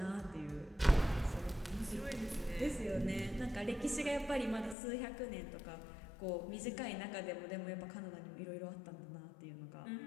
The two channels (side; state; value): right; drops out; at 4.8 s